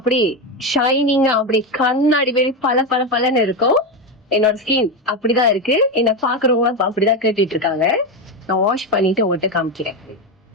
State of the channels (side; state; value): both; normal; correlation 0.13